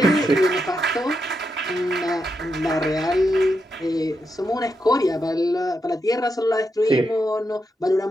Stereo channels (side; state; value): both; normal; correlation 0.84